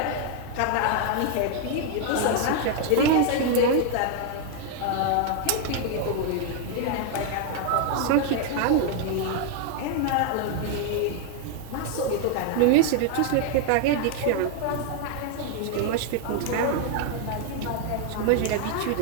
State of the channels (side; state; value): both; different; correlation 0.00